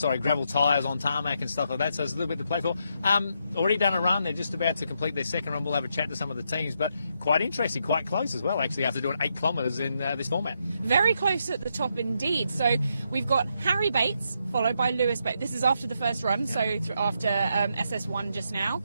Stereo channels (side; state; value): both; inverted; correlation -0.79